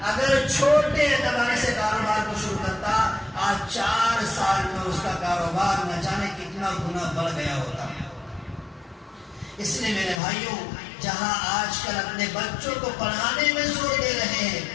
اگر چھوٹے اعتبار سے کاروبار کو شروع کرتا، آج 4 سال میں اس کا کاروبار نہ جانے کتنا گنا بڑھ گیا ہوتا۔ اس لیے میرے بھائیوں، جہاں آج کل اپنے بچوں کو پڑھانے میں زور دے رہے ہیں،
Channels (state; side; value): drops out; right; at 10.2 s